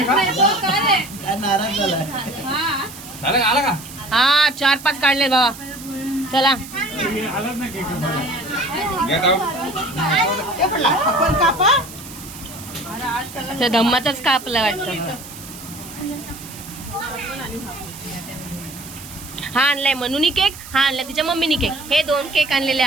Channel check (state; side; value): noise; right; hiss, 15 dB below the sound